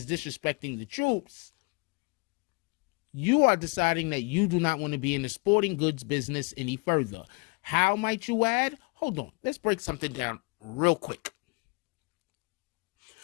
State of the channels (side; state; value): right; quieter; 30.8 dB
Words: disrespecting the troops, you are deciding that you do not want to be in the sporting goods business any further. How might you add? Hold on, let's break something down real quick.